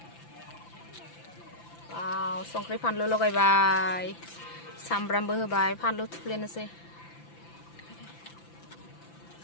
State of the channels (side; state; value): right; late; 5.9 ms